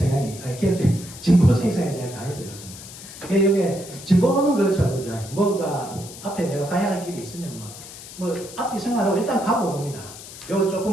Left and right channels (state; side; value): noise; left; hiss, 15 dB below the sound